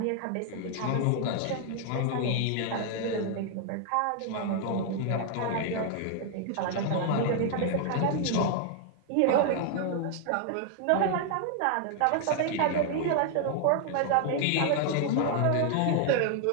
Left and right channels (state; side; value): different; both; correlation 0.00